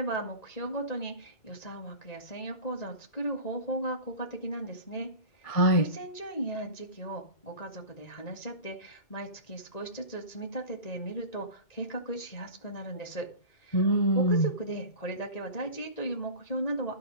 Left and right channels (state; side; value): late; right; 1.9 ms